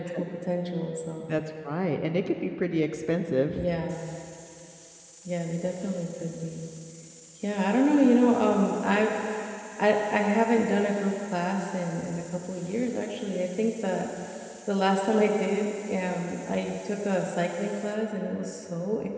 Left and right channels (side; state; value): both; identical; correlation 1.00